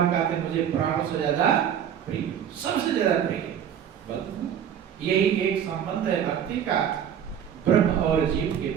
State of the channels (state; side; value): quieter; left; 9.0 dB